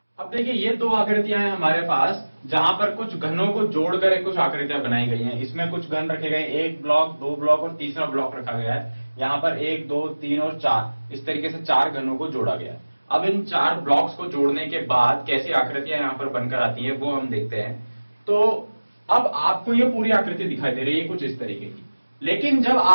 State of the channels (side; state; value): both; inverted; correlation -1.00